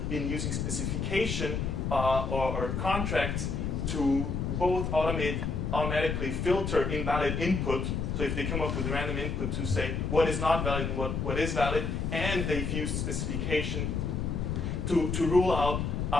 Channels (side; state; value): left; noise; rumble, 1 dB below the sound